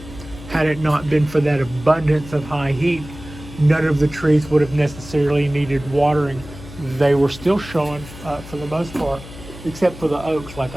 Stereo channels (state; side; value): noise; left; hum, 15 dB below the sound